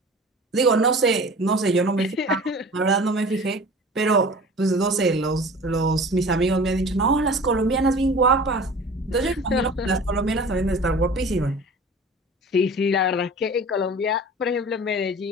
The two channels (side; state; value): both; normal; correlation 0.41